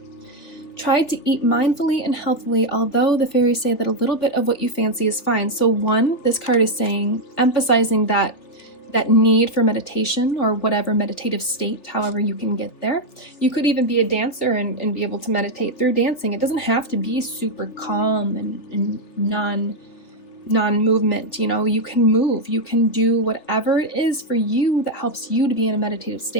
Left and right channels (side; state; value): right; late; 3.4 ms